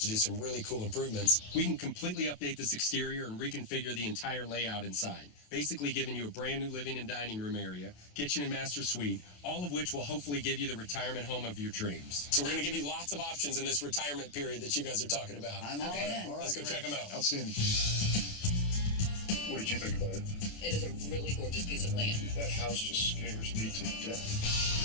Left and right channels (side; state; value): right; late; 28 ms